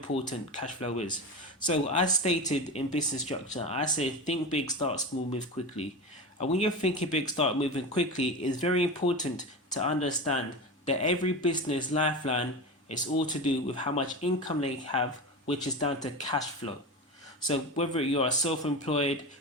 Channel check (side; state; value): both; normal; correlation 0.25